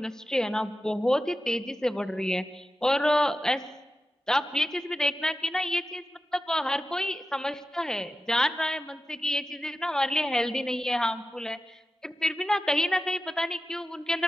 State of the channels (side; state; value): both; normal; correlation 0.92